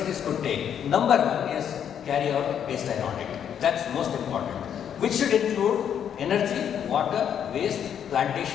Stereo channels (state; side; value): quieter; right; 8.8 dB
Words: could take? Number 1 is carry out baseline audit. That's most important, which should include energy, water, waste,